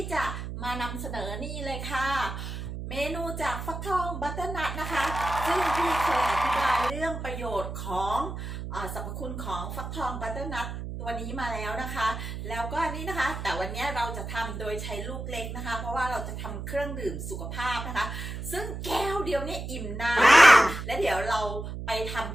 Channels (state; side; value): noise; right; hum, 7 dB below the sound